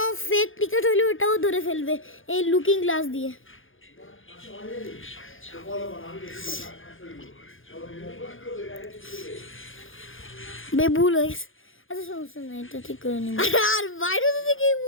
ফেক টিকিট হইলে ওটাও ধরে ফেলবে এই লুকিং গ্লাস দিয়ে। ভুল হয়েছে, আচ্ছা সমস্যা নেই, এটা ঠিক করে নিব। আর বাইরে থেকে কি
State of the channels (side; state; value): right; late; 0.58 ms